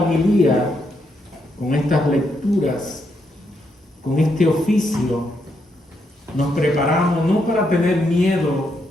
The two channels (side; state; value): both; normal; correlation 0.79